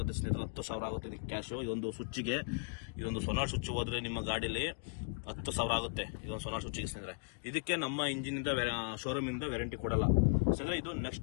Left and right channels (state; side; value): quieter; right; 37.7 dB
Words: ಸ್ನೇಹಿತರೆ, 10,000 ಆಗುತ್ತೆ ಇದಕ್ಕೆ ಕ್ಯಾಶು. ಇದೊಂದು ಸ್ವಿಚ್ಗೆ, ಇದೊಂದು ಸೋನಾರ್ ಸ್ವಿಚ್ ಹೋದ್ರೆ ನಿಮ್ಮ ಗಾಡೀಲಿ 10,000 ಆಗುತ್ತೆ ಇದೊಂದು ಸೋನಾರ್ ಸ್ವಿಚ್ಗೆ ಸ್ನೇಹಿತರೆ. ಇದಕ್ಕೆ ನಮ್ಮ ಇಂಜಿನಿಂದ ಶೋರೂಮಿಂದ ವ್ಯಾರಂಟಿ ಕೊಡಲ್ಲ ಸ್ನೇಹಿತರೆ. ಇದು